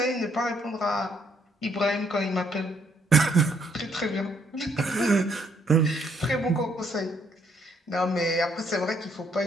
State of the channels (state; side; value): normal; both; correlation 0.70